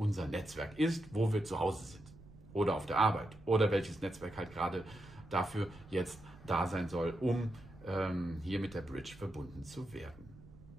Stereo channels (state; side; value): noise; right; rumble, 20 dB below the sound